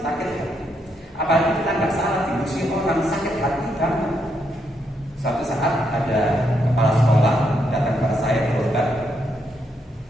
hati. Apalagi kita nggak salah dimusuhi orang, sakit hati banget. Suatu saat ada kepala sekolah datang kepada saya berobat,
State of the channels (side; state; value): both; normal; correlation 0.78